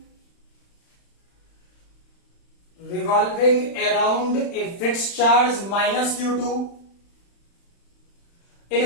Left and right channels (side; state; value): right; late; 35 ms